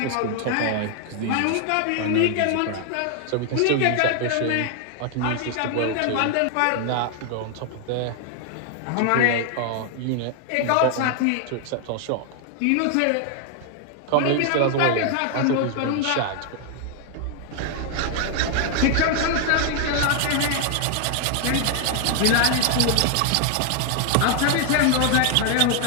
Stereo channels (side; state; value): both; different; correlation 0.00